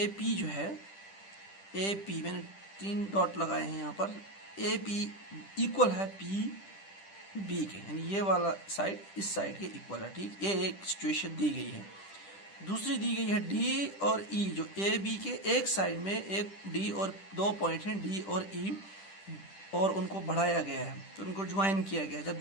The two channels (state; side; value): late; right; 10 ms